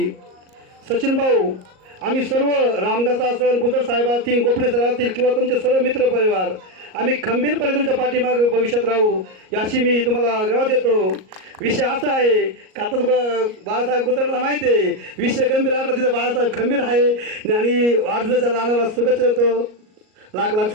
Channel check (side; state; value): left; late; 38 ms